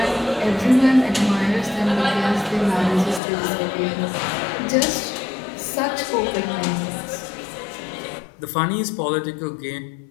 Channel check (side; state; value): right; drops out; at 3.2 s